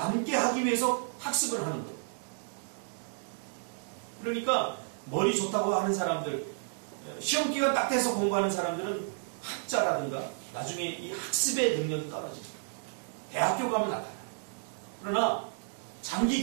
하기 위해서 학습을 하는 거예요. 그러니까 머리 좋다고 하는 사람들, 시험 기간 딱 돼서 공부하는 사람들은 학자라든가 나중에 이 학습의 능력이 떨어집니다. 대학교 가면 나타나요. 그러나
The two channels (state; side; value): silent; left; digital silence